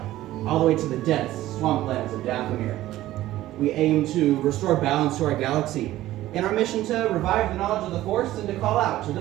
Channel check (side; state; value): left; quieter; 15.1 dB